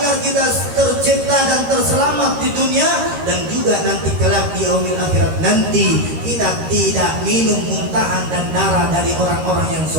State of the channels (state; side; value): late; left; 13 ms